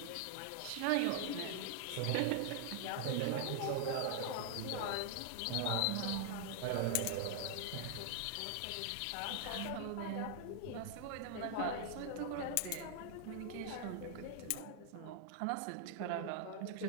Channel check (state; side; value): different; both; correlation 0.00